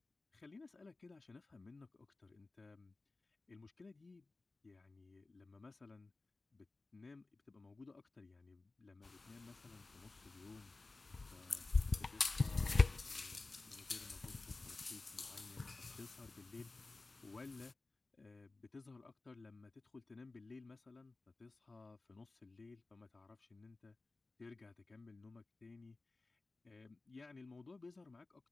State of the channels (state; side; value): quieter; right; 3.4 dB